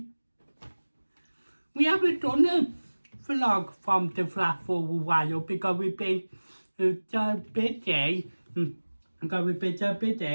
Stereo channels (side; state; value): both; inverted; correlation -1.00